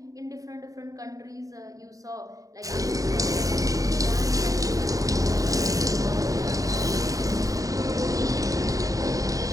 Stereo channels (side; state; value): left; late; 0.17 ms